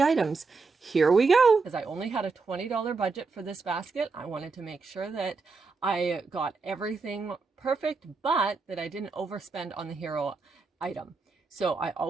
Here we go. As I only had a $20 budget for this basket, I wanted to make sure that I got everything perfect, but that I didn't overspend on the hero item. So I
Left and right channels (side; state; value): left; quieter; 4.3 dB